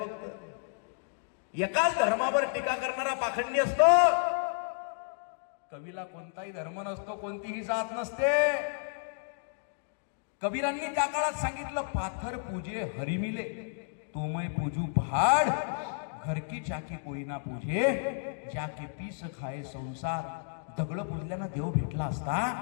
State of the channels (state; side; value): silent; right; digital silence